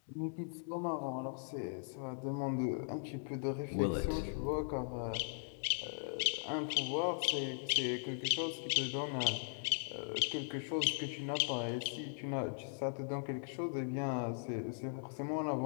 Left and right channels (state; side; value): silent; right; digital silence